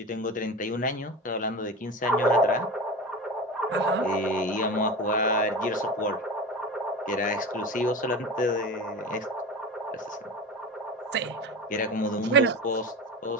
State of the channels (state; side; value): normal; both; correlation 0.28